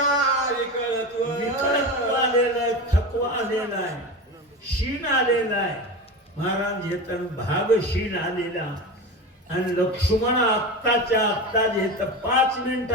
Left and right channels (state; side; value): normal; both; correlation 0.26